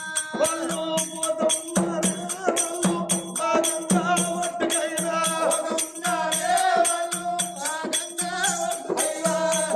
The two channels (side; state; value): both; identical; correlation 1.00